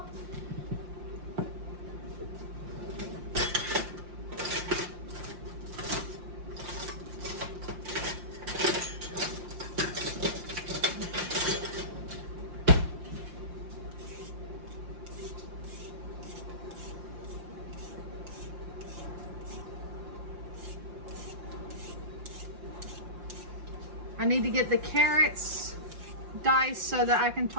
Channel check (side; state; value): left; late; 5.7 ms